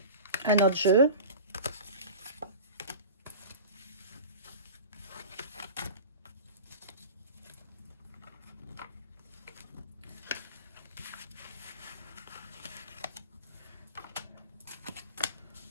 un autre jeu.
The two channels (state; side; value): inverted; both; correlation -0.34